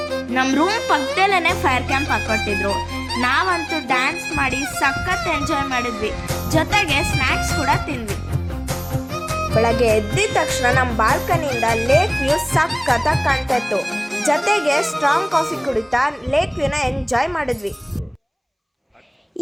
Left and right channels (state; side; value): identical; both; correlation 1.00